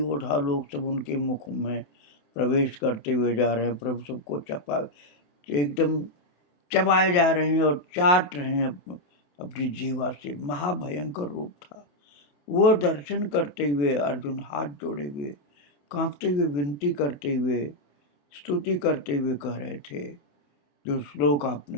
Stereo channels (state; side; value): late; right; 27 ms